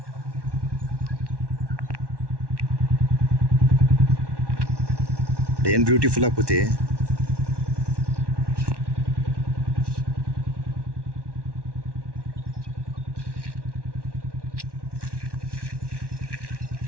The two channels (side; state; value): left; late; 1.1 ms